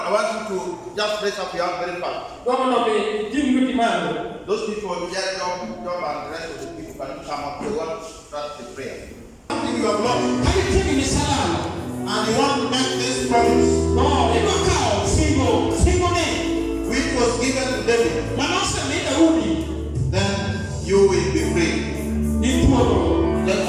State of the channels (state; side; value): identical; both; correlation 1.00